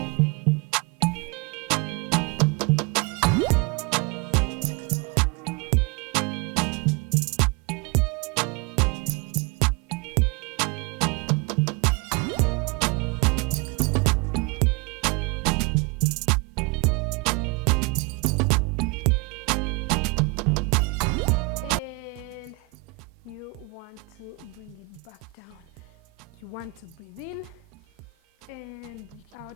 And you want to bring it back down. You want to breathe in and breathe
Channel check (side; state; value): left; quieter; 22.2 dB